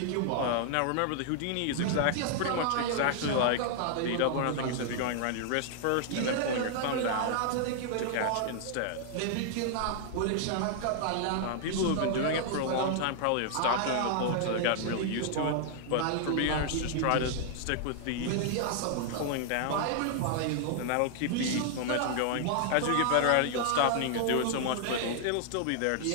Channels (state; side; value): different; both; correlation -0.01